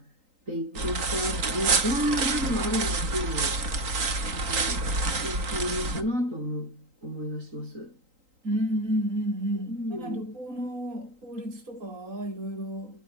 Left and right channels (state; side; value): late; left; 3.8 ms